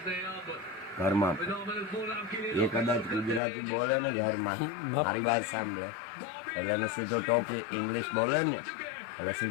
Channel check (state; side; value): drops out; right; at 3.4 s